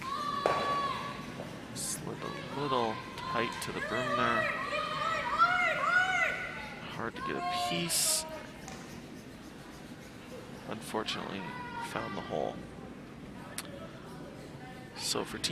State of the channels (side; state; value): both; identical; correlation 1.00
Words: slid a little tight to the broom there. Hard to get a piece. Unfortunately, found the hole. So for